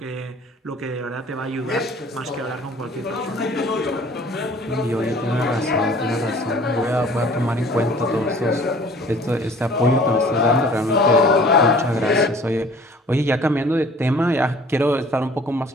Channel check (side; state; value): both; normal; correlation 0.50